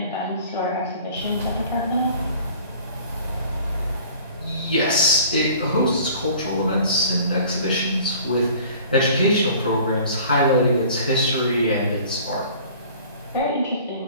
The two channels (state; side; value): inverted; both; correlation -0.48